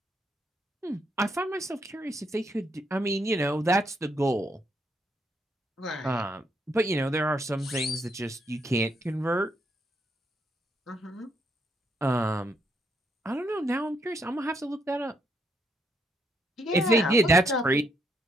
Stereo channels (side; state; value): both; normal; correlation 0.75